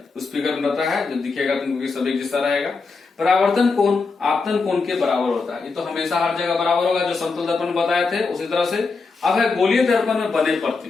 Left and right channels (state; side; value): quieter; right; 4.3 dB